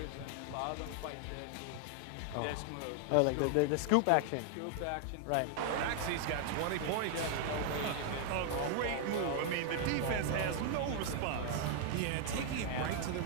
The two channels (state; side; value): different; both; correlation 0.00